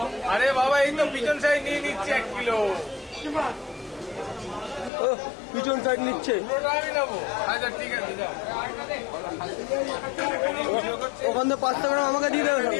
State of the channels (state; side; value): drops out; right; at 4.9 s